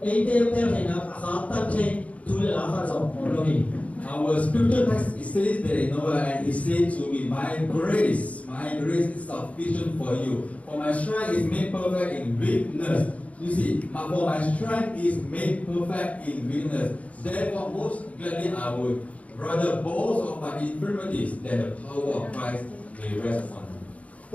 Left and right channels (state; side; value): late; right; 0.067 ms